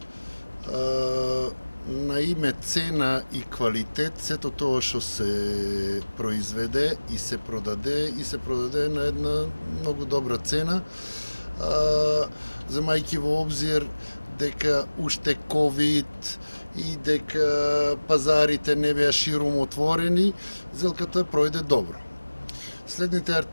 на име цена и квалитет, сето тоа што се произведе и се продаде на една многу добра цена, земајќи во обзир дека уште ковид и дека пазарите не беа ширум отворени, зелката пројде добро. Следните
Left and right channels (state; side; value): inverted; both; correlation -1.00